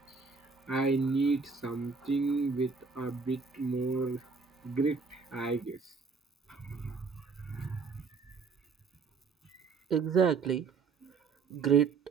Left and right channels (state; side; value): quieter; left; 4.9 dB